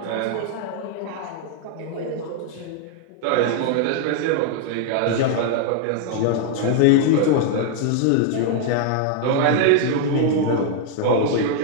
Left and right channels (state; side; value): different; both; correlation 0.00